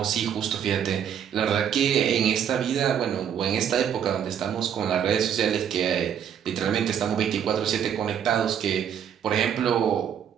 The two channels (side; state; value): left; quieter; 8.8 dB